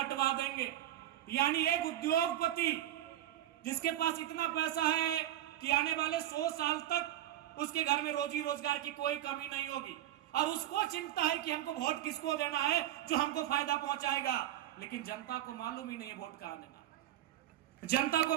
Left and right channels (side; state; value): left; quieter; 12.8 dB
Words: देंगे। यानी एक उद्योगपति जिसके पास इतना पैसा है कि आने वाले 100 साल तक उसके घर में रोजी रोजगार की कोई कमी नहीं होगी, और उसको चिंता है कि हमको वोट किसको देना है जो हमको फायदा पहुंचाएगा। लेकिन जनता को मालूम ही नहीं है वोट कहां देना, जनता को